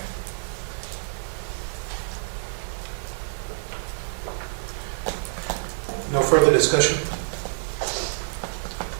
No further discussion?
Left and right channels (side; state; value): left; silent; digital silence